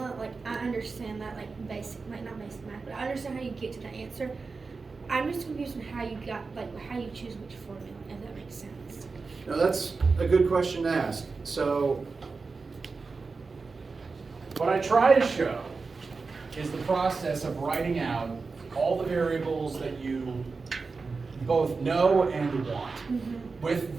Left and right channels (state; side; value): quieter; left; 4.4 dB